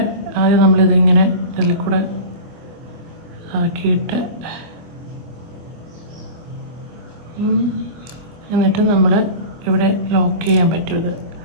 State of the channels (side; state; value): left; late; 24 ms